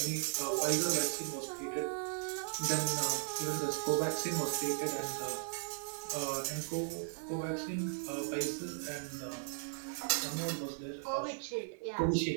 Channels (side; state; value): left; silent; 53 dB below the other